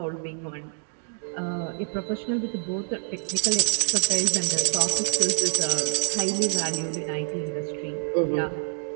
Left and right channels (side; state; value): left; silent; 56 dB below the other